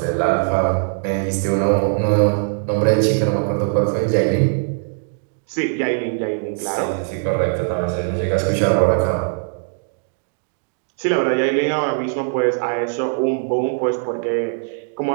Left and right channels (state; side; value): silent; left; 65 dB below the other